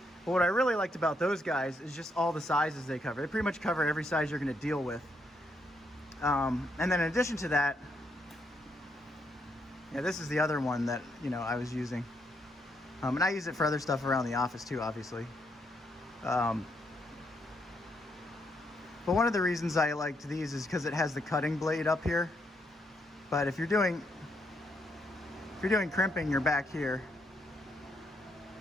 But what I really liked about those guys is just all the sizes they cover. They pretty much cover every size you're going to deal with. And then in addition to that, yeah, this is the other one that, you know, I was using. And I use it for other stuff around the office too, obviously. But one of the reasons I liked these is because it has the cutting blade up here. But if you're doing crimping, you're back here.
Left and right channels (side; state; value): both; normal; correlation 0.76